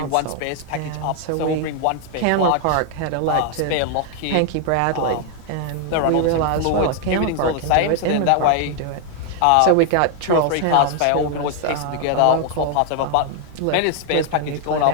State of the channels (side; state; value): both; different; correlation 0.00